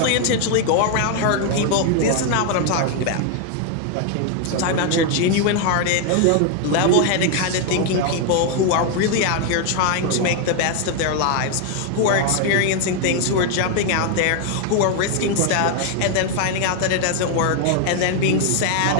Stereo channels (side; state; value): both; different; correlation 0.01